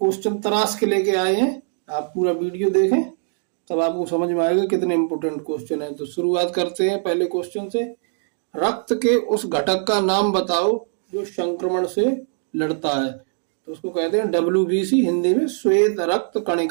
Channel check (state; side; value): silent; left; 64 dB below the other